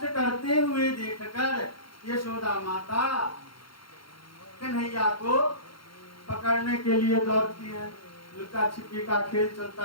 करते हुए देखकर यशोदा माता कन्हैया को पकड़ने के लिए दौड़ती है। लुका छिपी का खेल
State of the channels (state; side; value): late; right; 0.73 ms